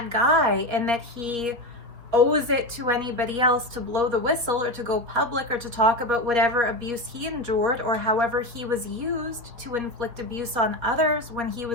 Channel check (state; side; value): late; left; 4.1 ms